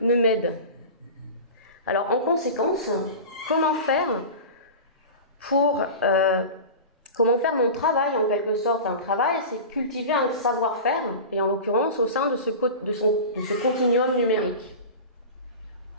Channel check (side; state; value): both; inverted; correlation -0.31